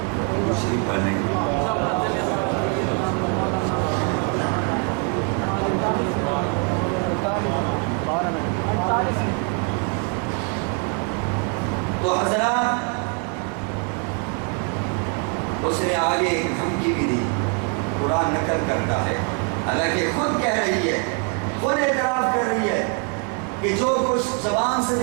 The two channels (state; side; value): quieter; left; 34.9 dB